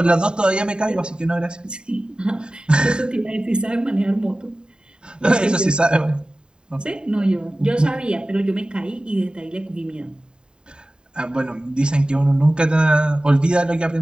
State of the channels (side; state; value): left; late; 0.049 ms